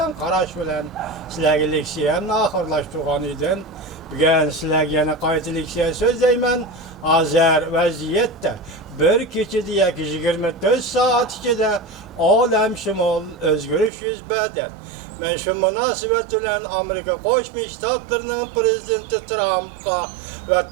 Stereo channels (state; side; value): drops out; left; at 13.9 s